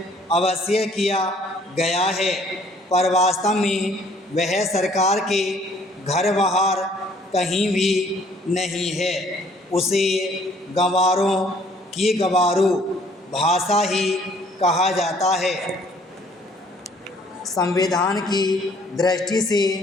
अवश्य किया गया है, पर वास्तव में वह सरकार के घर बाहर कहीं भी नहीं है। उसे गंवारों की गंवारू भाषा ही कहा जाता है। संविधान की दृष्टि से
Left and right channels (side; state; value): both; normal; correlation 0.60